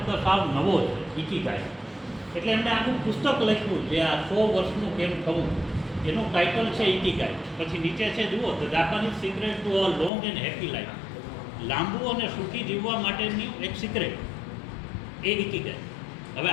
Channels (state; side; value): drops out; right; at 10.1 s